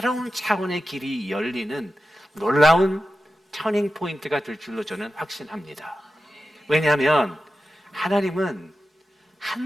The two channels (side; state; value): both; normal; correlation 0.92